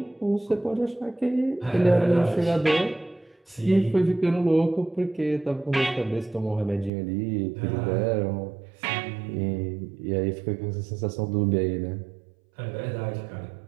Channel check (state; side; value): drops out; left; at 6.9 s